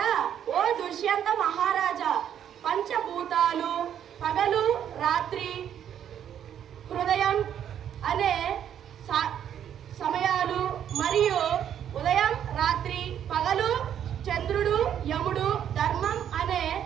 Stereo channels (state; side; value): quieter; left; 9.6 dB